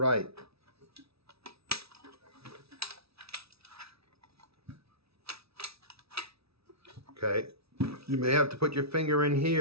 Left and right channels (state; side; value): late; left; 0.77 ms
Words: Okay, you may have to put your finger in